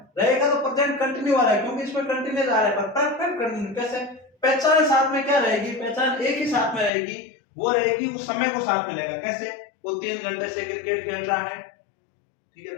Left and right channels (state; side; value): drops out; right; at 6.9 s